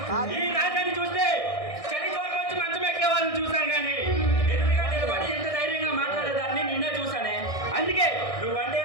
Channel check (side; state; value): right; late; 1.6 ms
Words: ఈ రాజాన్ని చూస్తే చలి చోట వచ్చి మంచం ఎక్కే వాళ్ళని చూసాను కానీ ఎదురుగా నిలబడి ఎంత ధైర్యంగా మాట్లాడేదాన్ని నిన్నే చూసానే. అందుకే నువ్వంటే